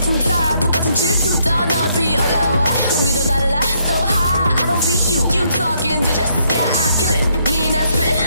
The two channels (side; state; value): both; inverted; correlation -0.72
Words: tired. 똑같은 질투. 더 높이 올라와. 공기도 달라. So high. I don't feel you. You talking digits. Yeah, I kill it. Mean I spit